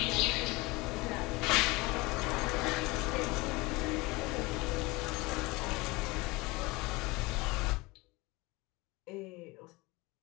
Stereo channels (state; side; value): quieter; right; 23.4 dB